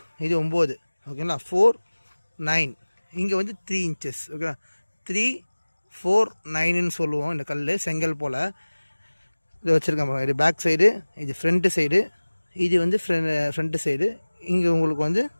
இது 9, ஓகேங்களா. 4, 9, இங்கே வந்து 3 இன்ச்சஸ், ஓகேங்களா. 3, 4, 9ன்னு சொல்லுவோம் இந்த கல், செங்கல் போல். இது வச்சுருக்கேன். இது பேக் சைடு, இது ஃப்ரண்ட்டு சைடு, இது வந்து ஃப்ரண்ட்டு சைடு. இங்கே உங்களுக்கு வந்து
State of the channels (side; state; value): both; inverted; correlation -1.00